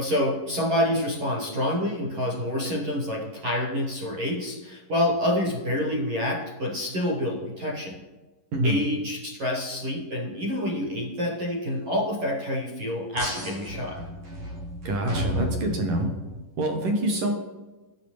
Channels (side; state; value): left; late; 11 ms